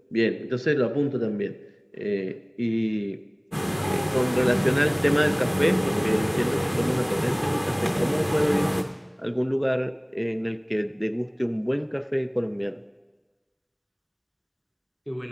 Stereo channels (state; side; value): identical; both; correlation 1.00